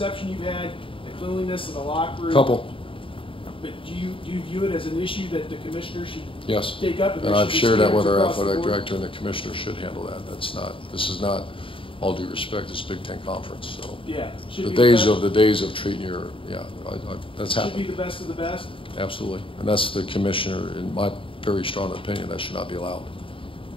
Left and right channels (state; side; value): late; right; 0.25 ms